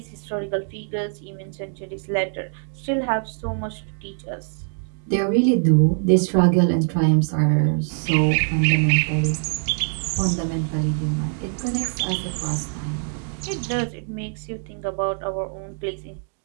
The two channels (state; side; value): silent; left; 58 dB below the other